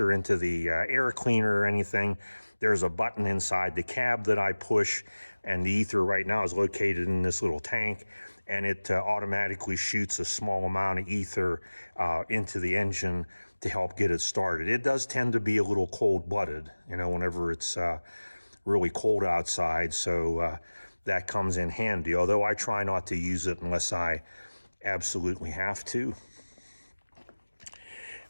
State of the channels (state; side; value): inverted; both; correlation -1.00